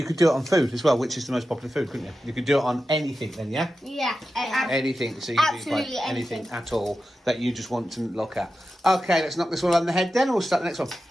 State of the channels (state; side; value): normal; both; correlation 0.92